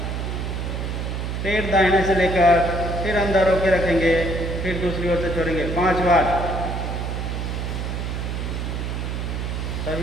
फिर दाहिने से लेकर फिर अंदर रोके रखेंगे, फिर दूसरी ओर से छोड़ेंगे। 5 बार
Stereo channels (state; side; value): noise; right; hum, 3 dB below the sound